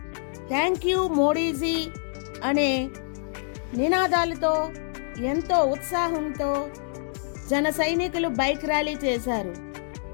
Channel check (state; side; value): silent; right; 61 dB below the other